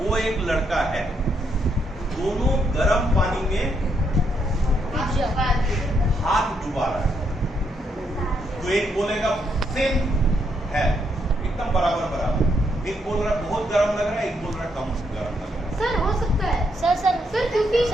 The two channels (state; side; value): normal; both; correlation 0.76